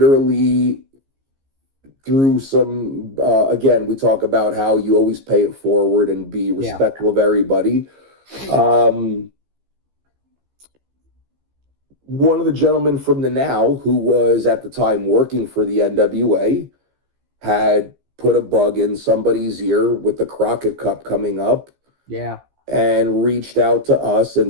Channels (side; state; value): left; late; 15 ms